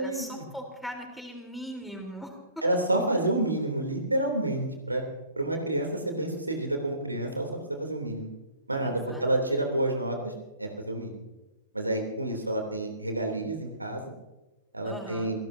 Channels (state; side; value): inverted; both; correlation -0.52